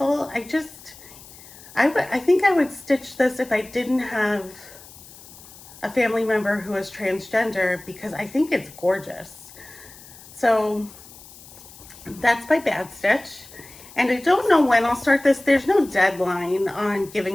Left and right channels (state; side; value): noise; left; hiss, 20 dB below the sound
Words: I think I would stitch this if I didn't have a family member who is transgender, because I think it's gorgeous. So that's by Bad Stitch. And I don't know when I'll start this. There's no deadline on